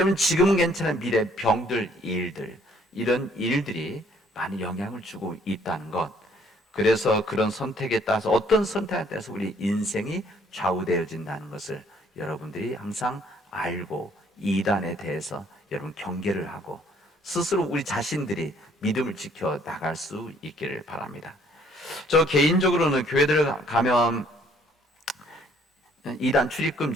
지금은 괜찮은 미래 병들 일들, 이런 일들이 많이 영향을 주고 있다는 것. 그래서 그런 선택에 따라서 어떤 선택에 따라서 우리 인생이 좌우되어진다는 것을 여러분들이 항상 알고 이단에 대해서 여러분 경계를 하고 스스로 우리 자신들이 믿음을 지켜 나갈 수 있기를 바랍니다. 저 개인적으로는 교회들 가면 이단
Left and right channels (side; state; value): both; normal; correlation 0.62